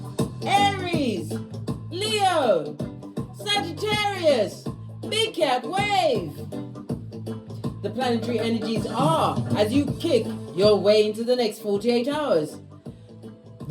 Aries, Leo, Sagittarius, Big Cat Wave. The planetary energies are as you kick your way into the next 48 hours.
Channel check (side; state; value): both; identical; correlation 1.00